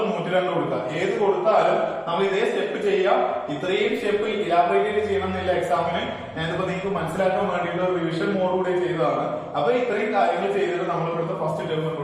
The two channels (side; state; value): both; identical; correlation 1.00